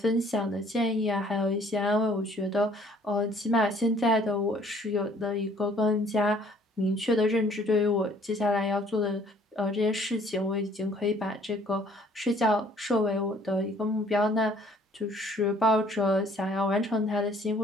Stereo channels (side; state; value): both; normal; correlation 0.58